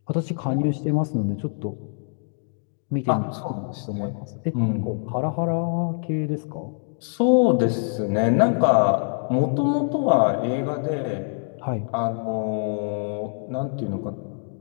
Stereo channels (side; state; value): right; silent; digital silence